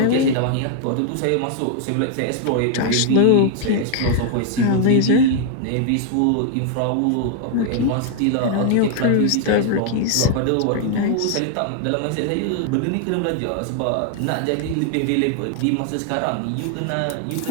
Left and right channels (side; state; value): both; different; correlation 0.00